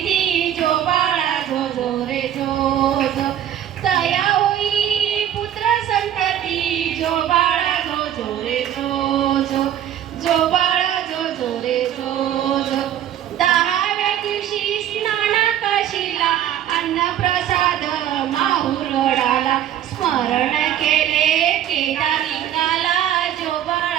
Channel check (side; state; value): left; quieter; 10.9 dB